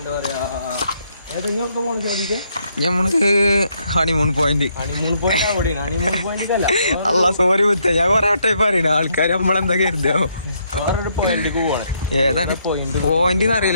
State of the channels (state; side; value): inverted; both; correlation -0.73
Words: പറയാ ഏതെങ്കിലും പോണ സാധിക്കാം. നമുക്ക് ഹണിമൂൺ പോയിന്റ് അവിടെയാണ്. ഹണിമൂൺ പോയിന്റ് അല്ല. അല്ല സോറി മുത്ത, ഞാൻ കൊറേ വട്ടം പറയണ ആൾക്കാർ നമ്മളെന്താ കരുതാ വേറൊരു പോയിന്റിക്ക് പോകണം. ഏതാണ് പോയിന്റ്